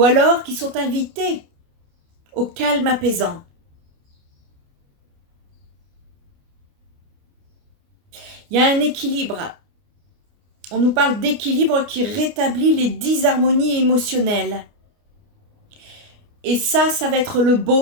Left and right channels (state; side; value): late; left; 29 ms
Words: alors qui sont invités au calme apaisant. Il y a un équilibre. On nous parle d'équilibre qui rétablit les disharmonies émotionnelles. Et ça va être le